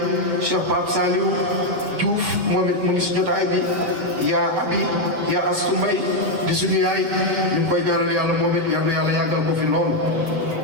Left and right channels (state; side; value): late; left; 7.2 ms